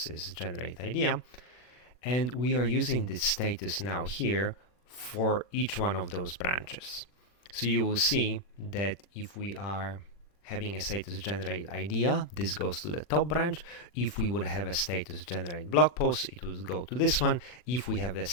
is generate idea, and we are using this status now here for each one of those branches. So you will see that if we are having a status generate idea, this goes to the top branch. If we would have a status generate blog post, it would go to this one. If we have a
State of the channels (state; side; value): late; right; 40 ms